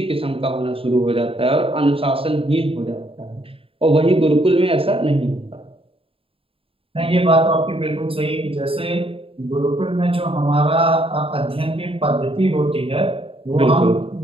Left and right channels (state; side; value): late; left; 0.27 ms